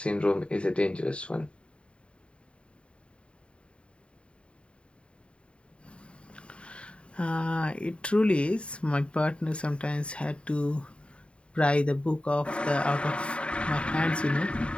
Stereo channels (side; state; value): right; late; 0.057 ms